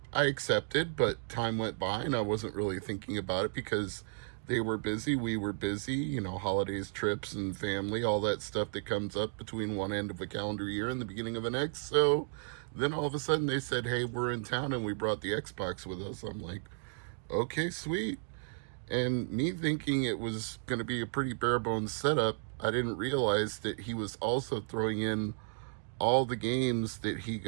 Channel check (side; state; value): left; silent; digital silence